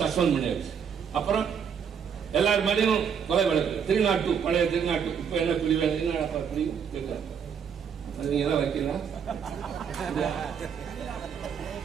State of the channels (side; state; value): left; quieter; 7.3 dB